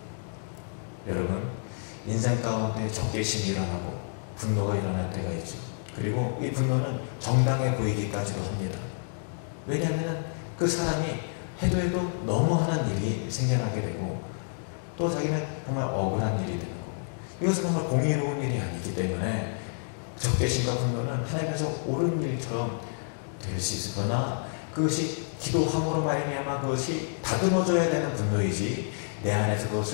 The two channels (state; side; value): silent; right; digital silence